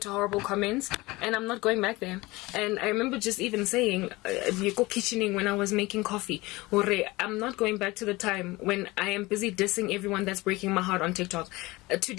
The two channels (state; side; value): quieter; right; 21.4 dB